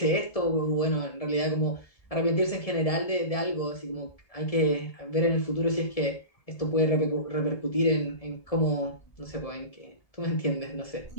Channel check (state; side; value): late; right; 1.7 ms